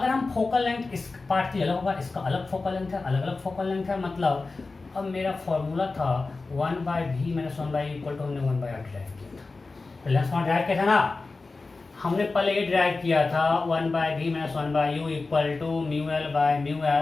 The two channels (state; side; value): quieter; right; 3.8 dB